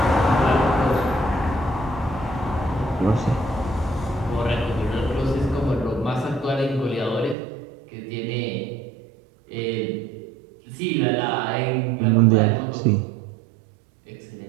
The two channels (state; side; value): drops out; left; at 7.4 s